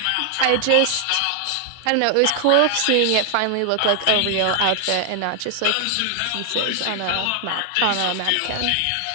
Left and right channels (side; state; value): both; different; correlation 0.00